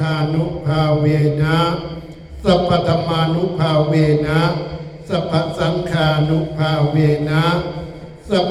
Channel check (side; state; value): both; identical; correlation 1.00